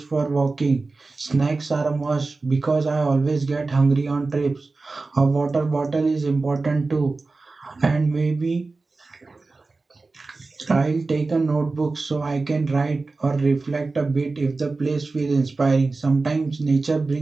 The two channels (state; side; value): quieter; left; 3.7 dB